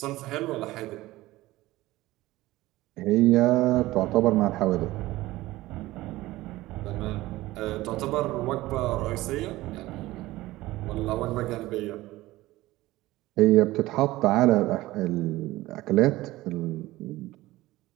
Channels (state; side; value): quieter; left; 17.8 dB